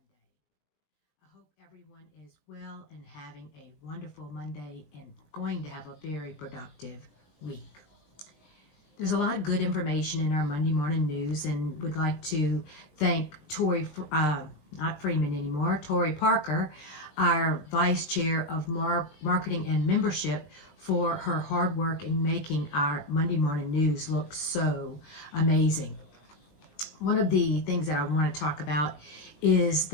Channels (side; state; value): right; late; 20 ms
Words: I hope everyone is well and having a wonderful Monday and going to have a very productive week. There's a lot of good information in our Monday morning news, and would like to thank not Freeman anymore, Tori Parker, our Vice Chair of Marketing and Membership, for her hard work in making our Monday morning news look so amazing. One of the things that I want to talk about is